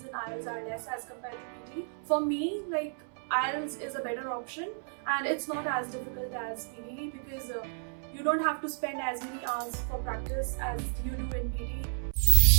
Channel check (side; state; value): left; silent; 56 dB below the other